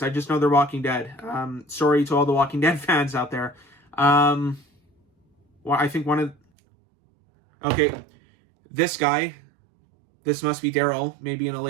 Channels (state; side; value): drops out; left; at 6.4 s